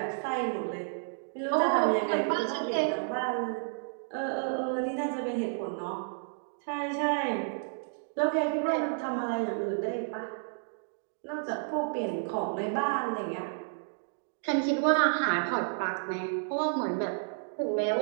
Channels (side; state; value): left; silent; digital silence